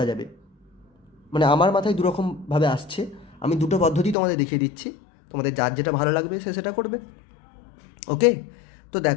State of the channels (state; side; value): drops out; right; at 4.2 s